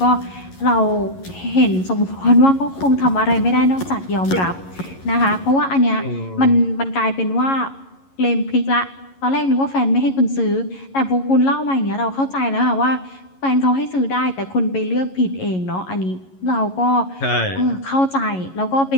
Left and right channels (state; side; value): late; right; 11 ms